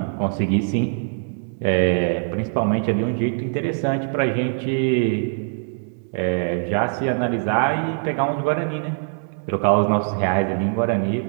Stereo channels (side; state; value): left; silent; 64 dB below the other